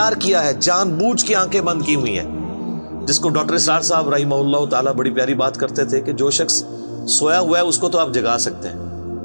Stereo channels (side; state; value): both; inverted; correlation -1.00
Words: کیا ہے، جان بوجھ کے آنکھیں بند کی ہوئی ہیں، جس کو ڈاکٹر اسرار صاحب رحمہ اللہ تعالیٰ بڑی پیاری بات کرتے تھے کہ جو شخص سویا ہوا ہے اس کو تو آپ جگا سکتے ہیں،